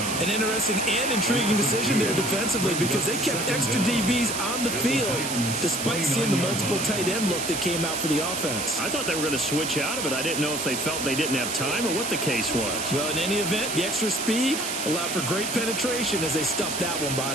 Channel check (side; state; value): right; noise; hiss, 3 dB below the sound